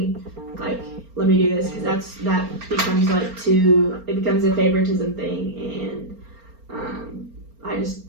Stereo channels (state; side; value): late; left; 4.4 ms